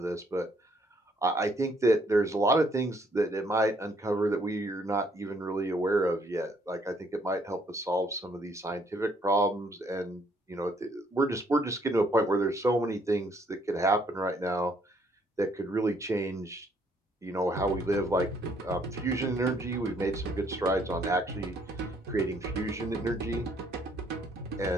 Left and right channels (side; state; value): both; normal; correlation 0.67